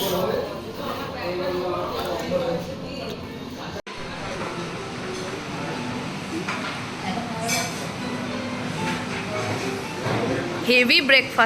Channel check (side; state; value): both; identical; correlation 1.00